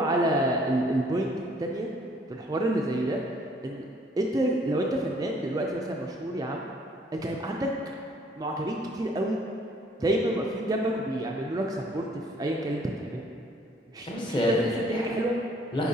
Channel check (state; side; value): normal; both; correlation 0.61